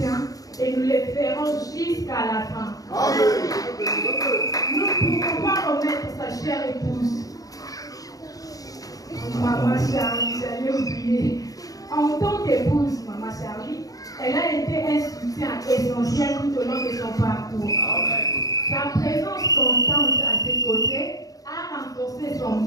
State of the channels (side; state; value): right; late; 0.17 ms